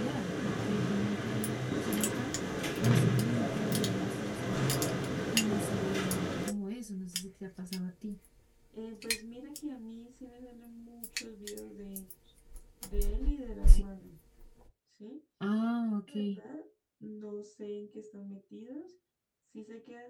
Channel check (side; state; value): both; identical; correlation 1.00